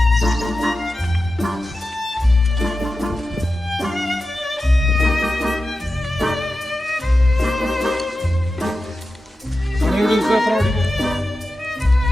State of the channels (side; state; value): both; normal; correlation 0.93